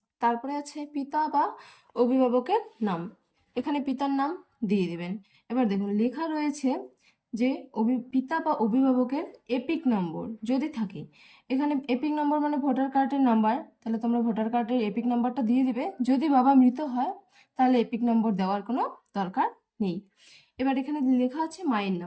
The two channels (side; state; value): both; identical; correlation 1.00